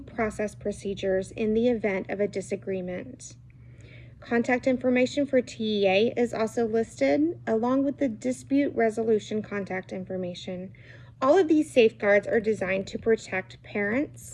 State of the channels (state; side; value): identical; both; correlation 1.00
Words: procedures in the event of a disagreement. Contact information for TEA is also listed, along with the dispute resolution contact information. All of these safeguards are designed to protect